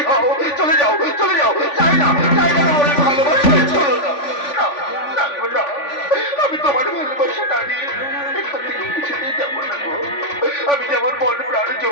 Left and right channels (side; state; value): right; late; 3.5 ms